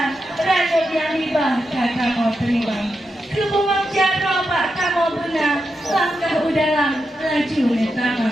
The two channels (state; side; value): normal; both; correlation 0.86